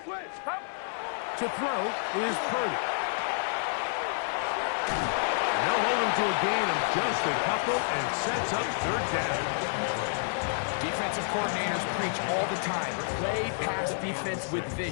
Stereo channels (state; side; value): silent; right; digital silence